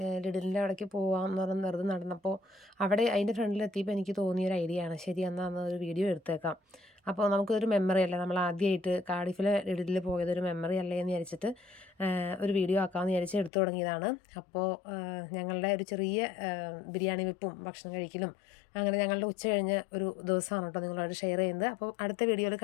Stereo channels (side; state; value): right; drops out; at 13.5 s